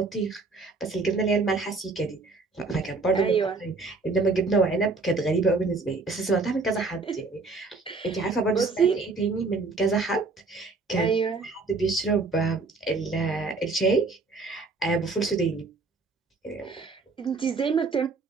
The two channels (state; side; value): quieter; left; 3.9 dB